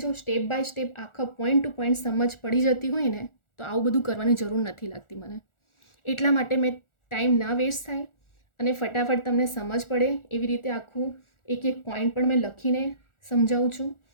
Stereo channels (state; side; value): late; right; 1.4 ms